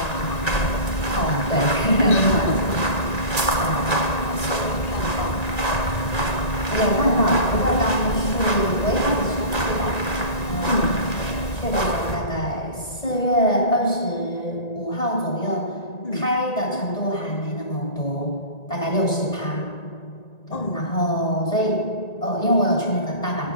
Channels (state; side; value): late; right; 1.9 ms